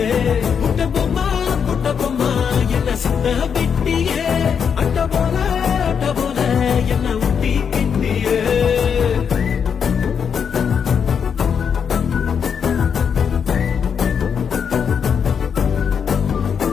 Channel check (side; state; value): right; quieter; 7.0 dB